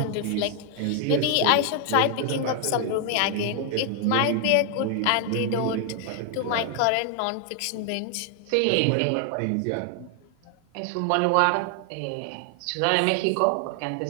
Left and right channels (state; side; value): different; both; correlation 0.00